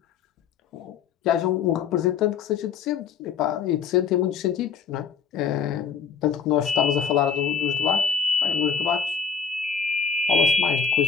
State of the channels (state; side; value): quieter; right; 6.6 dB